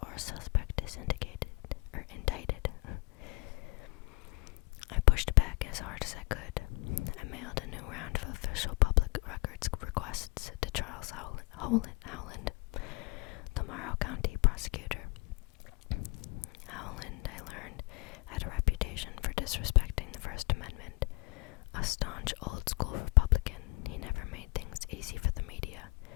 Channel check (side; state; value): right; quieter; 27.8 dB